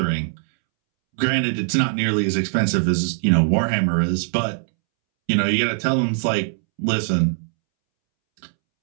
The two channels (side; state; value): left; silent; 65 dB below the other